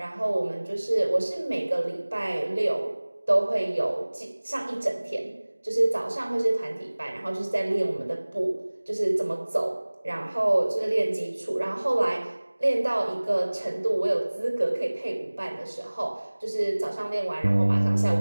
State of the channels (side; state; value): both; inverted; correlation -1.00